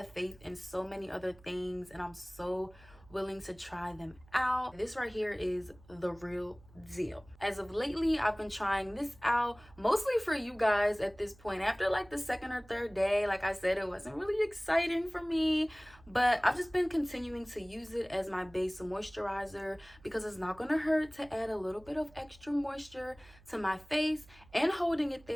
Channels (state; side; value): noise; right; hum, 25 dB below the sound